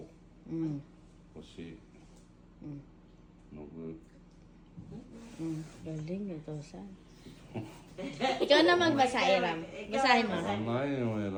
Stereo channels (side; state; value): both; identical; correlation 1.00